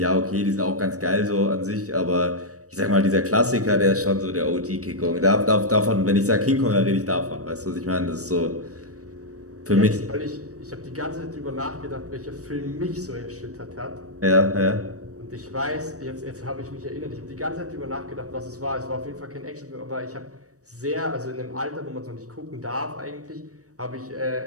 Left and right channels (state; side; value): late; left; 0.66 ms